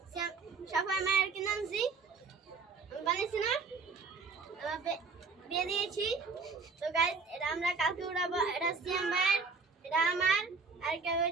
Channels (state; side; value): quieter; left; 4.6 dB